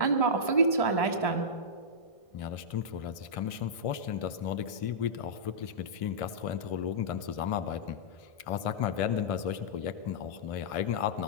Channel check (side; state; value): right; late; 1.5 ms